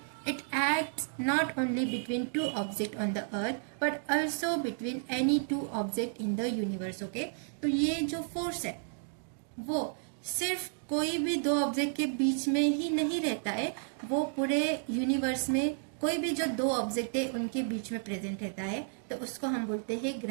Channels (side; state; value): left; silent; digital silence